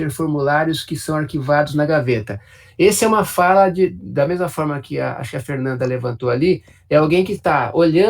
formulários que são arquivados na gaveta. Essa é uma fala da mesma forma que acho que a Fernanda levantou ali, é alguém que está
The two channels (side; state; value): both; identical; correlation 1.00